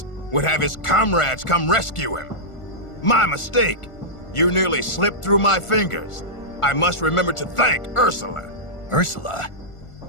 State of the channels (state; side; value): late; right; 1.4 ms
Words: would have his comrades come rescue him. My mistake. You nearly slipped through my fingers. I must remember to thank Ursula. Ursula?